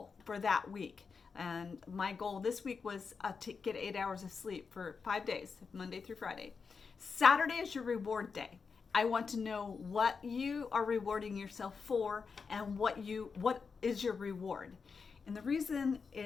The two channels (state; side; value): quieter; right; 5.3 dB